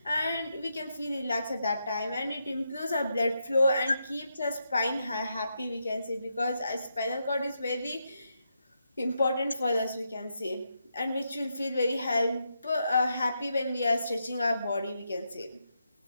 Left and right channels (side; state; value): both; inverted; correlation -0.83